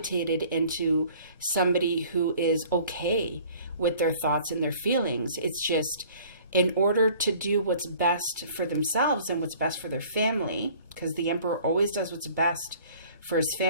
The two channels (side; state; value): both; inverted; correlation -0.52